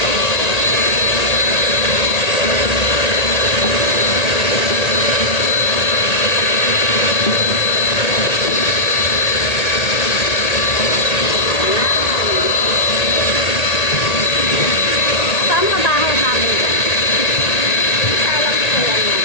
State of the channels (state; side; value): late; right; 1.8 ms